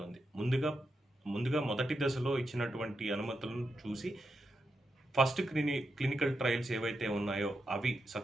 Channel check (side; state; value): both; normal; correlation 0.86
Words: ముందుగా మొదటి దశలో ఇచ్చినటువంటి అనుమతులను చూసి ఫస్ట్ క్లినికల్ ట్రయల్స్ ఏవైతే ఉన్నాయో అవి